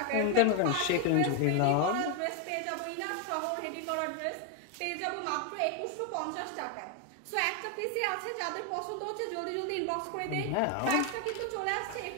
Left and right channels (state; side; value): different; both; correlation 0.01